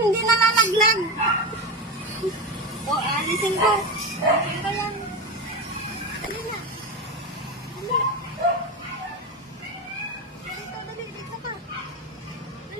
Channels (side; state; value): both; normal; correlation 0.19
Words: Hindi nalalaglag. O, alisin ko. Alisin ko yan. Dali na. Dali. Dito, dali. Dito ka.